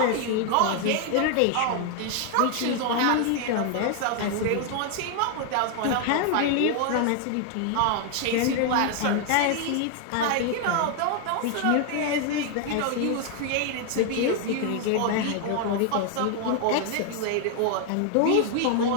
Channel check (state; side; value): different; both; correlation 0.00